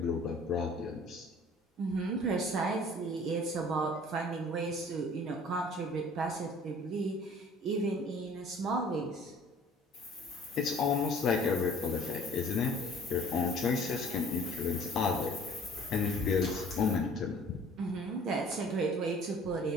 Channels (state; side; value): normal; both; correlation 0.51